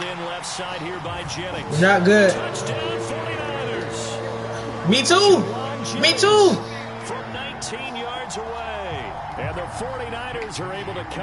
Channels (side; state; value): both; identical; correlation 1.00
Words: in left side here by Jennings. You're not good. Touchdown 49ers. Me too. Me too. From 19 yards away. And the 49ers are able to